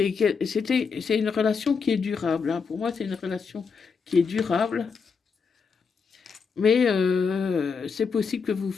une relation qui est durable. Hein. Pour moi, c'est une relation qui est durable. Mais c'est possible que vous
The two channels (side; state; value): right; quieter; 5.5 dB